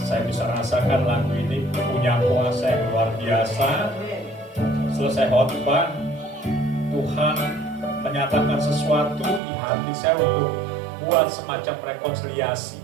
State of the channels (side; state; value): left; drops out; at 9.4 s